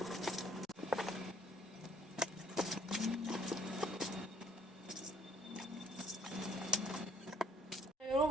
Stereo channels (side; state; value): both; normal; correlation 0.63